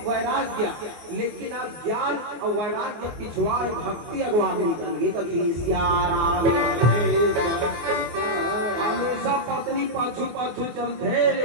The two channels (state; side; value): late; left; 24 ms